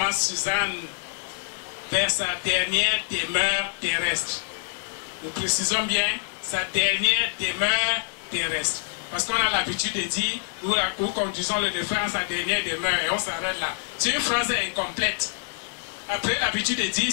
Suzanne vers sa dernière demeure terrestre. Nous précisons bien sa dernière demeure terrestre. Parce qu'on a l'habitude de dire, nous conduisons le défunt à sa dernière demeure et on s'arrête là. C'est une phrase incomplète. Après l'habitude de dire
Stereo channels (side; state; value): right; silent; digital silence